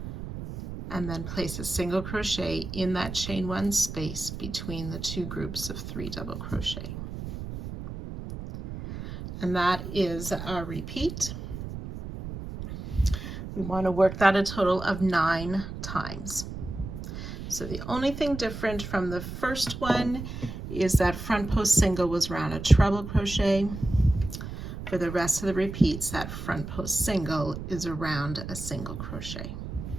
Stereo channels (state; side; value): noise; right; rumble, 8 dB below the sound